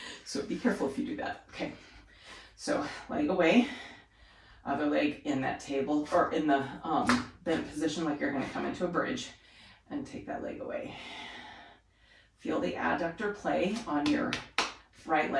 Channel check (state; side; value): identical; both; correlation 1.00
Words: So be careful if you do that. Okay, so leg away, other leg in that table or in the bent position like you're going to come into a bridge, and take that leg away. Feel the adductor play on your right